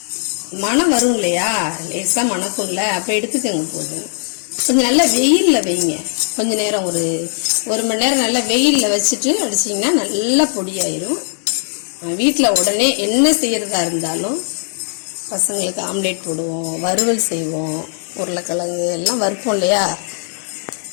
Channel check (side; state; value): right; silent; 67 dB below the other